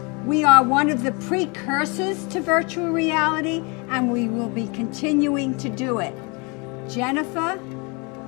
We are one of the precursors to virtual reality, and we will be continuing to do it. Jennifer,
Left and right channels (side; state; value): right; quieter; 30.1 dB